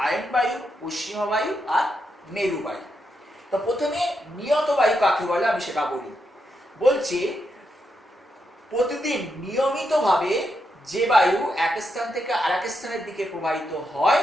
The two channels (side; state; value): both; normal; correlation 0.83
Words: আয়ন বায়ু, পশ্চিমা বায়ু আর মেরু বায়ু। তো প্রথমে নিয়ত বায়ু কাকে বলে আমি সেটা বলি। বলছে প্রতিদিন নিয়মিতভাবে যে বায়ু এক স্থান থেকে আরেক স্থানের দিকে প্রবাহিত হয়